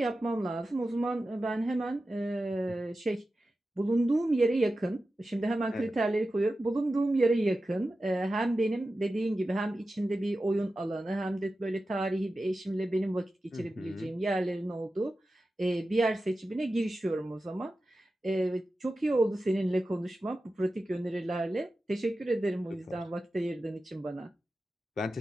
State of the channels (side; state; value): both; normal; correlation 0.93